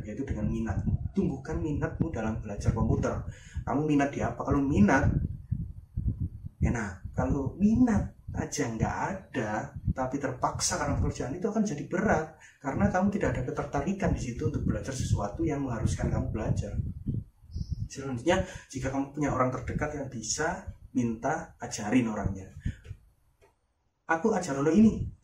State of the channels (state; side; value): identical; both; correlation 1.00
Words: yaitu dengan minatmu. Tumbuhkan minatmu dalam belajar komputer. Kamu minat di apa? Kalau minat enak, kalau minat aja nggak ada tapi terpaksa karena pekerjaan, itu akan jadi berat karena kamu tidak ada ketertarikan di situ untuk belajar sesuatu yang mengharuskan kamu belajar. Selanjutnya, jika kamu punya orang terdekat yang bisa, minta ajarin orangnya. Aku ajar lo ini,